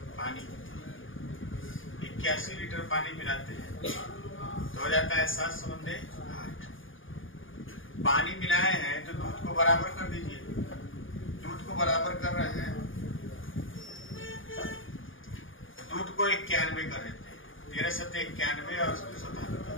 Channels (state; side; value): late; right; 0.58 ms